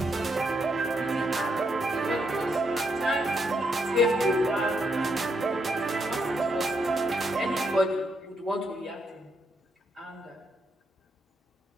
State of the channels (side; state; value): both; normal; correlation 0.78